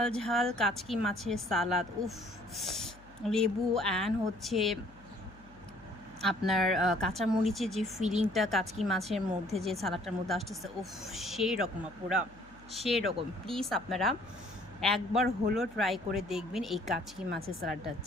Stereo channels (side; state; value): left; noise; hum, 23 dB below the sound